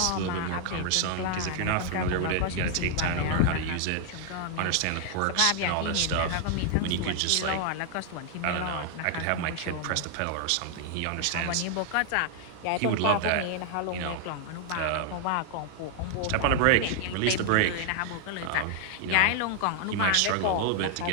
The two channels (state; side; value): different; both; correlation 0.00